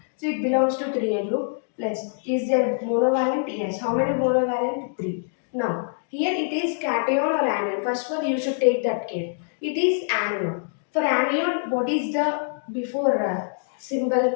So it belongs to 3A group. Plus, is there monovalent? Yes. How many monovalent? 3. Now, here it is cation or anion. First of all, you should take that care. It is anion. For anion, what is the before symbol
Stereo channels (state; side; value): silent; right; digital silence